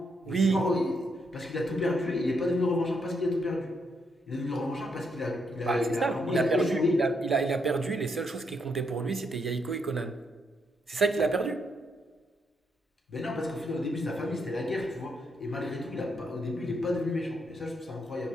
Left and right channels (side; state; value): both; normal; correlation 0.77